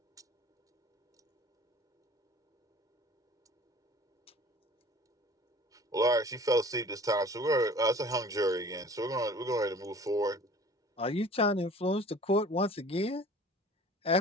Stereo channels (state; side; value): normal; both; correlation 0.47